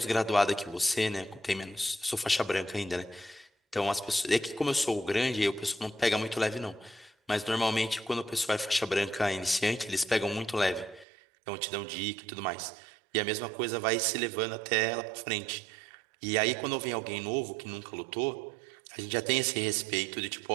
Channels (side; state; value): left; drops out; at 11.1 s